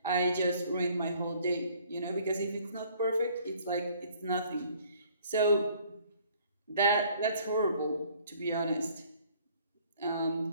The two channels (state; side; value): inverted; both; correlation -0.58